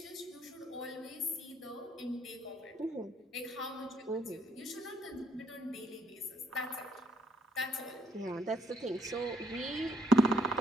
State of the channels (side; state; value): both; normal; correlation 0.70